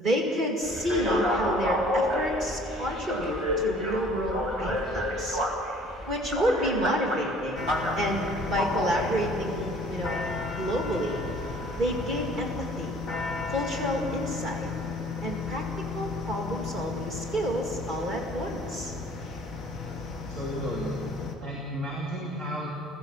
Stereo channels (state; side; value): normal; both; correlation 0.53